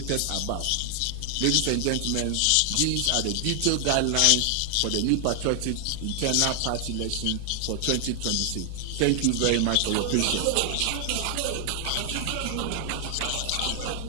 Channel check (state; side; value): different; both; correlation 0.00